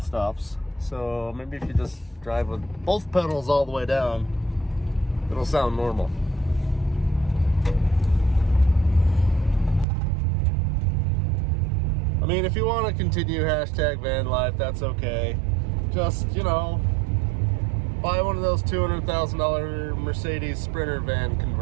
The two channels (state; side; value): drops out; left; at 9.9 s